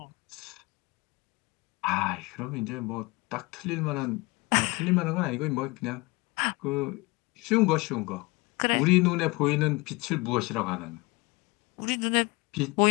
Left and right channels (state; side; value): quieter; right; 24.4 dB